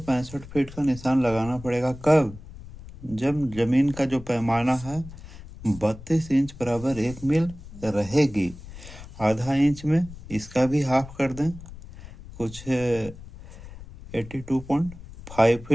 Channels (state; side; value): noise; left; rumble, 16 dB below the sound